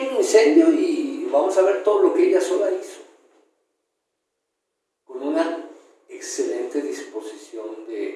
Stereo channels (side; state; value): both; identical; correlation 1.00